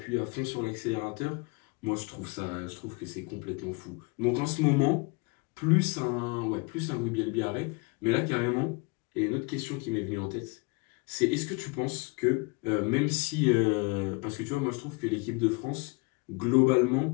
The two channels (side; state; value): right; quieter; 28.8 dB